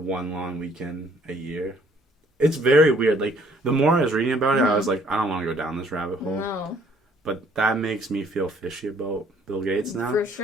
long weekend a year. It's very weird. Like, the more I was reading about it, I was like, I don't want to go down this rabbit hole. No. But that makes me feel fishy about Bill Gates now. For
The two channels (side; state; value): both; normal; correlation 0.61